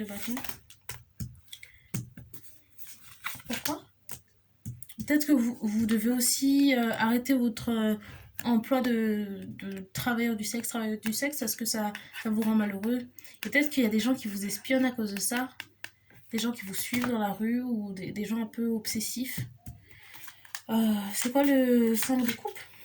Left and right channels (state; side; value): identical; both; correlation 1.00